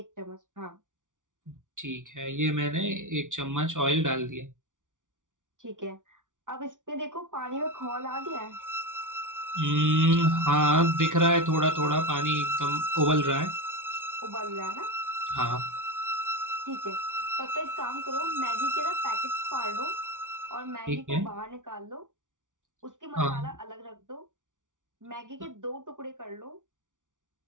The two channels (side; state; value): left; late; 0.87 ms